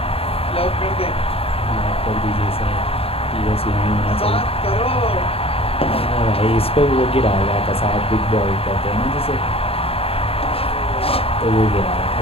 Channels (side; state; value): right; late; 0.28 ms